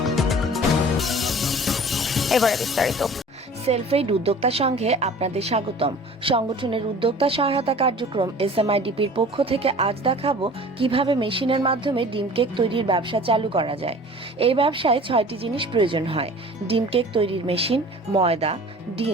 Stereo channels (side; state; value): both; normal; correlation 0.44